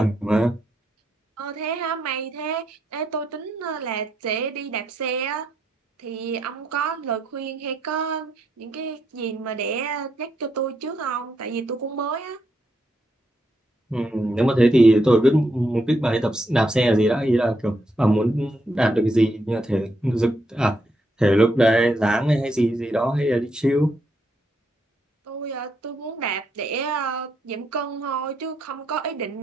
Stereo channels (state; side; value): normal; both; correlation 0.79